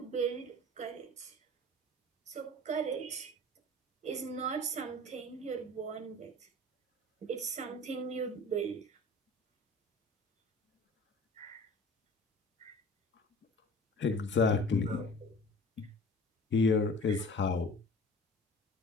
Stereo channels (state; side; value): normal; both; correlation 0.42